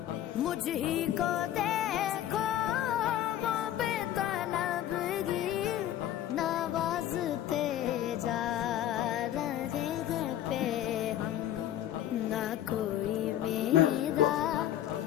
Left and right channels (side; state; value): right; quieter; 11.9 dB